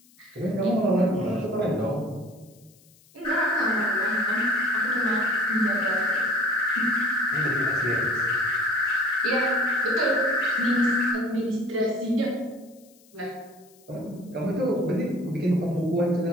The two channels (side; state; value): left; noise; hiss, 29 dB below the sound